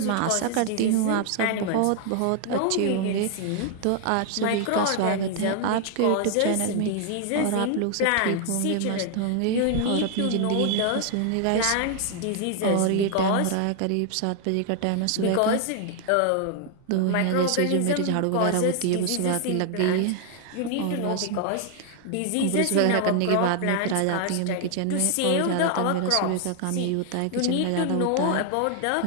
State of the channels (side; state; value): both; different; correlation 0.00